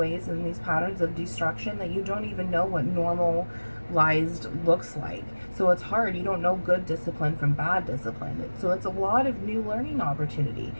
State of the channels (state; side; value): inverted; both; correlation -1.00